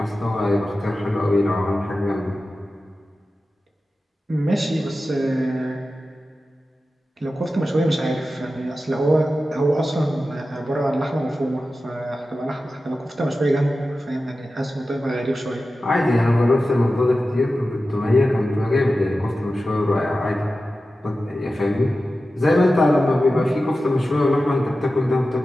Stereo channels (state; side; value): normal; both; correlation 0.93